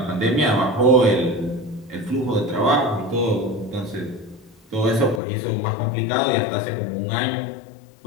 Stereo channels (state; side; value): drops out; right; at 5.2 s